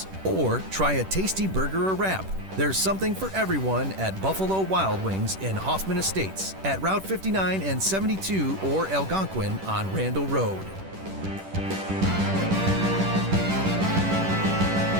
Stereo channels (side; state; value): left; late; 10 ms